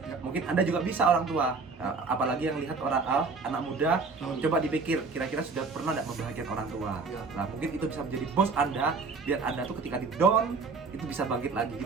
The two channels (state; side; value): quieter; left; 4.4 dB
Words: Ya. mungkin Anda juga bisa orang tua. Apalagi yang lihat orang anak muda, Betul. coba dipikir kira-kira sudah pernah tidak membahagiakan orang tua. Ya. Nah, mungkin itu bisa menjadi bos Anda, biar Anda tuh ketika di down itu bisa bangkit lagi